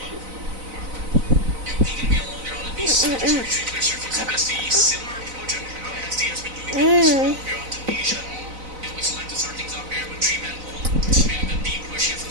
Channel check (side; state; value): left; late; 4.0 ms